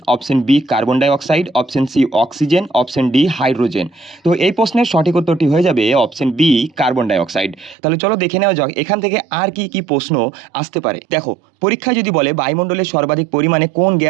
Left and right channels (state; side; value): drops out; left; at 7.8 s